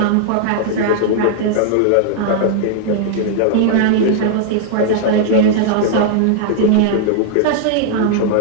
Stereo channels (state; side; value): different; both; correlation -0.01